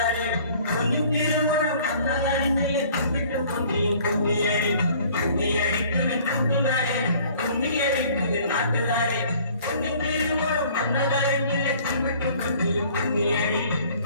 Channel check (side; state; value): both; inverted; correlation -0.53